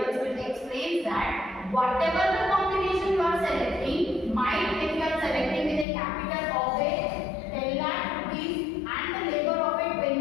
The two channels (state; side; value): drops out; right; at 5.9 s